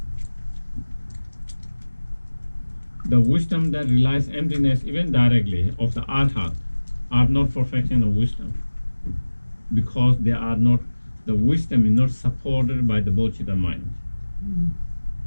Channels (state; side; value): inverted; both; correlation -1.00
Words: The wisdom that realizes emptiness, even directly, of the arhat, are not perfection of wisdom, because they are not. The wisdom is not supported by the bodhicitta mind.